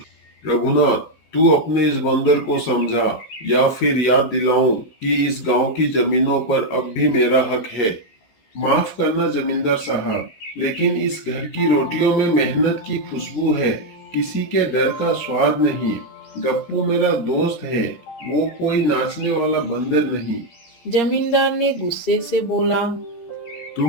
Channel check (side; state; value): right; late; 14 ms